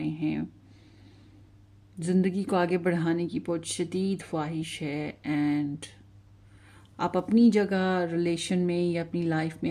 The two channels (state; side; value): identical; both; correlation 1.00